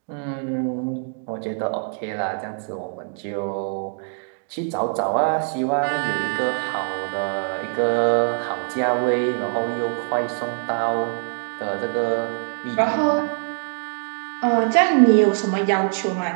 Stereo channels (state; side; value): silent; left; 63 dB below the other